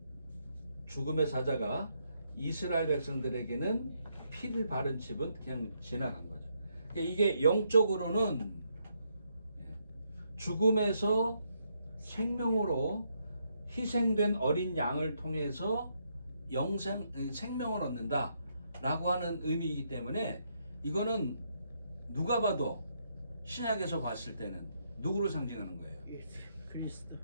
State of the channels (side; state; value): both; inverted; correlation -0.76